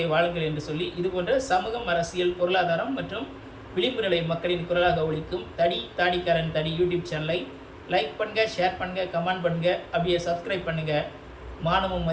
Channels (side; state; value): both; identical; correlation 1.00